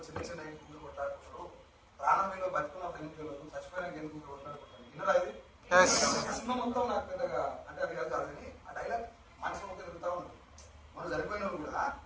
చిన్న చిన్న ఎందుకు కొట్టాడుకుంటారు, ప్రాణం మీద బతుకున్నప్పుడు ఎందుకు వెళ్ళదు, చచ్చిపోయినాక ఎందుకు కొట్టాడుకుంటారు. విన్నరా ఇది సినిమా మొత్తం నాకు పెద్దగా అంటే అది కాదు కానీ ఆ డైలాగ్ మనసు మొత్తం తిరుగుతా ఉంటుంది. మనం చనిపోయిన కూడా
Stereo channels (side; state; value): both; identical; correlation 1.00